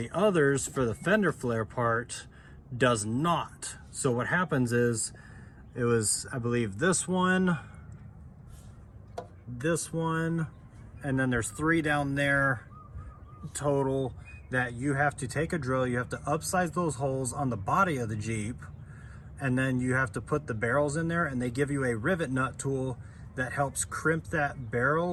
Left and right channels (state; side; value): identical; both; correlation 1.00